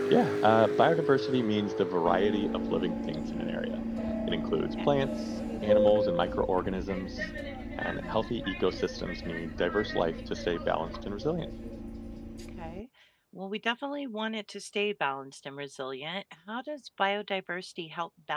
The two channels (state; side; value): identical; both; correlation 1.00